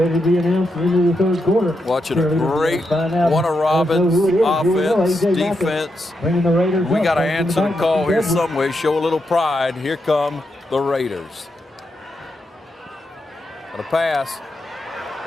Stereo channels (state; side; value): normal; both; correlation 0.84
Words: to be announced into the third quarter. Watching a great Warner Robbins offense, defense. We got to answer the call here some way, show a little pride. Here come the Raiders. Got a pass